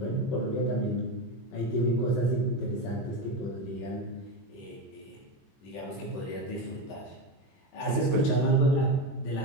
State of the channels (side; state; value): right; late; 21 ms